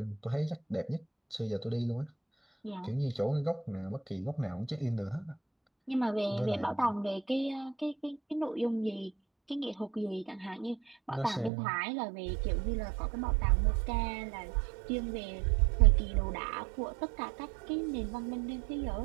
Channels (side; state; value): left; drops out; at 11.5 s